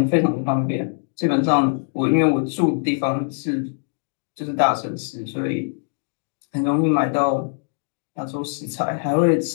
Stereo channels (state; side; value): silent; right; digital silence